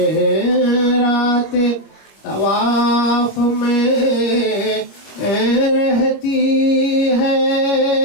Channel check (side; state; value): right; late; 25 ms